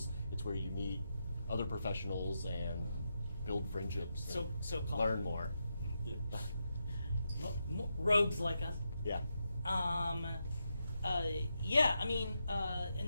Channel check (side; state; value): both; inverted; correlation -0.86